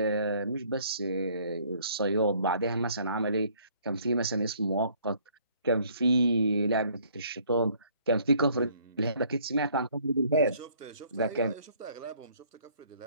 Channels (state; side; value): inverted; both; correlation -0.61